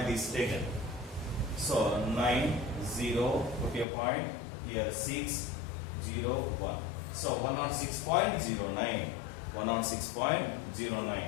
this taken. So 9 0, put a point here, 6 0 1. So 106.09.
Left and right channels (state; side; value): drops out; right; at 3.9 s